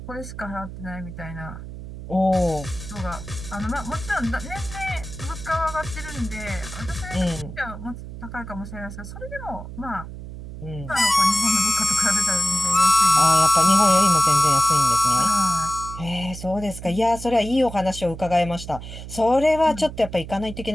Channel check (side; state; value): right; noise; hum, 11 dB below the sound